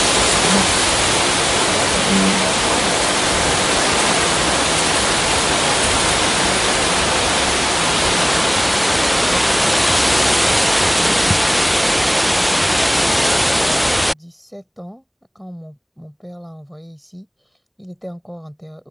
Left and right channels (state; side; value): identical; both; correlation 1.00